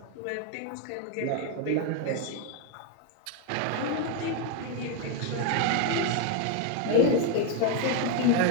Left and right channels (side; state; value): both; different; correlation 0.01